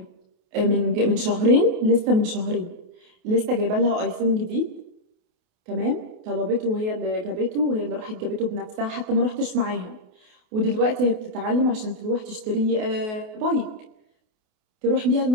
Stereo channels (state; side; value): late; left; 28 ms